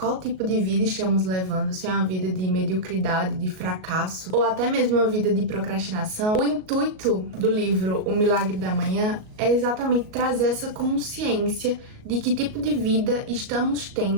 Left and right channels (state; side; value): late; left; 38 ms